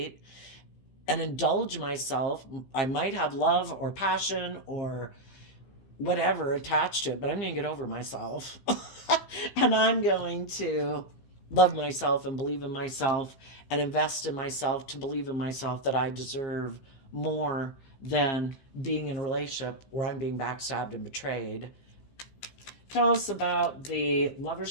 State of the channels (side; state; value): right; late; 15 ms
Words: and indulge myself. I might have love or passion or whatever attached to it, but I'm going to get over myself. And I'm going to love myself and believe in myself and invest in myself to believe in myself that I deserve more than being in a relationship where I'm being backstabbed and betrayed. Tell us about the